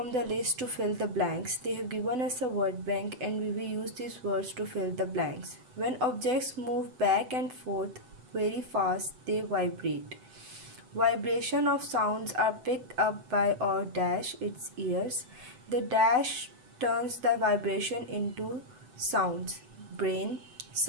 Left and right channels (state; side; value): late; left; 8.0 ms